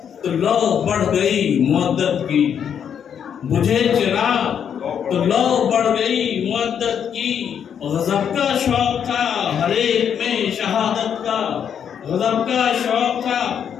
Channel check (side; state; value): right; quieter; 8.2 dB